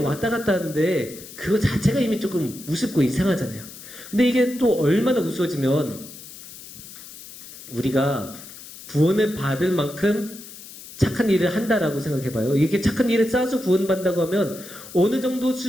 갔다 하는데 그거 자체가 이미 조금 우습고 이상하잖아요. 근데 이게 또 얼마나 우스워지면, 우리가 구원을 받을 만큼 착한 일을 한다라고 생각해봐요. 이게 착한 일을 쌓아서 구원받는다고 하면 어느 정도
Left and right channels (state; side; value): noise; left; hiss, 16 dB below the sound